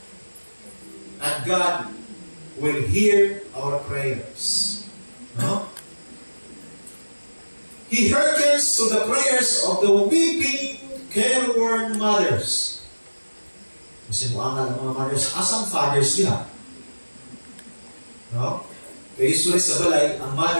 And God will hear our prayers. No? He hearkens to the prayers of the weeping, careworn mothers. Kasi muangal ng mga mothers, asang fathers niya? No? Kaya usually sa balay, ang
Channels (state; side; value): inverted; both; correlation -1.00